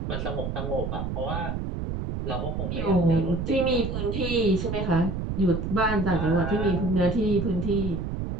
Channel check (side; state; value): right; noise; rumble, 3 dB below the sound